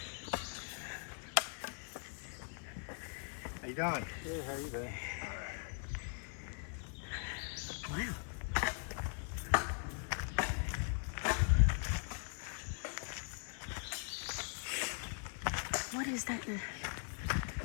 How you doing? Yeah, how you doing? Wow. What is that?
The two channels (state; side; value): silent; right; 51 dB below the other